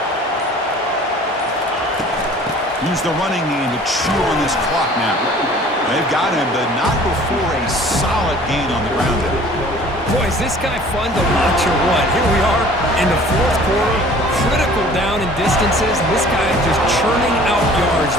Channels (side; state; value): both; normal; correlation 0.49